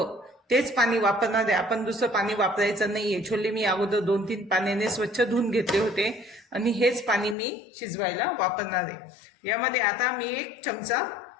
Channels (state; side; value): drops out; right; at 7.4 s